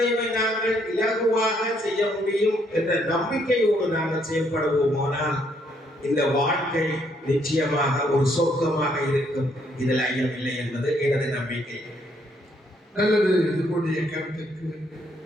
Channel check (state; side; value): normal; both; correlation 0.70